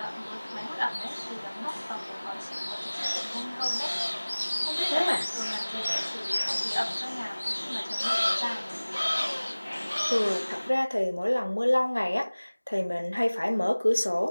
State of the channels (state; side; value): inverted; both; correlation -1.00